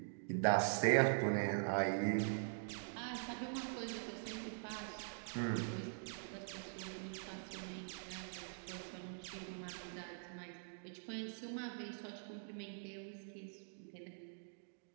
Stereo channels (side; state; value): left; silent; digital silence